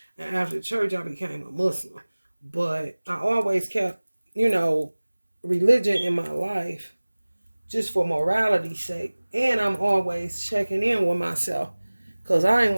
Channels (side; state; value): both; inverted; correlation -1.00